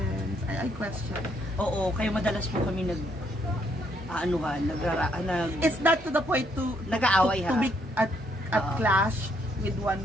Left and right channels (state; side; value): normal; both; correlation 0.71